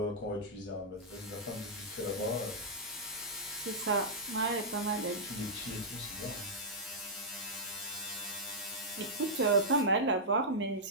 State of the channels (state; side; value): normal; both; correlation -0.10